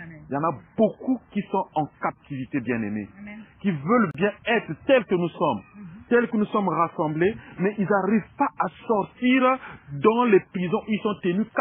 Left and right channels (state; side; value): identical; both; correlation 1.00